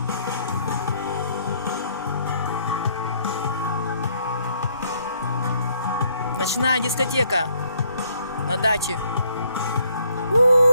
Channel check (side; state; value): both; inverted; correlation -0.68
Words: Ночная дискотека на даче.